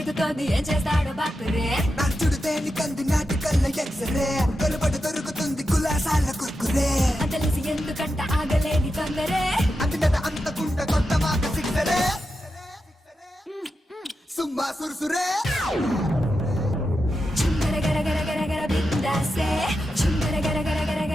ఏం చేస్తాడో బాపురే. నడుచుడు తేని కంది నాటి కళ్ళ ఎక్సరే కలుబడి దొరుకుతుంది కులాసాల కుర్కురే. అంతలేసి ఎందుకంట ఆగలేని తొందరే. అంతట అంతకుంట కొత్త మాట సిక్సరే సుమ్మా సురుసురే. చుంగర గర గర గర గర బిందాసే. చుంగర గర గర గర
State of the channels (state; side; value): normal; both; correlation 0.89